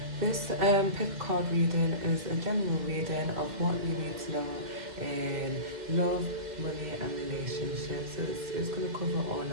This pick card reading is a general reading of what you need to know in love, money and relationships. So it's going to cover all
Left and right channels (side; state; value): left; late; 2.1 ms